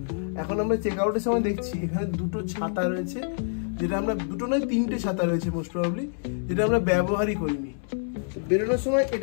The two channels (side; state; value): right; silent; digital silence